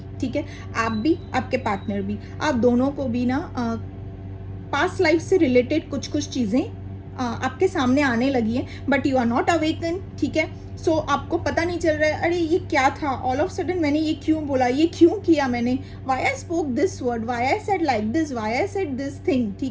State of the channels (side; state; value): both; identical; correlation 1.00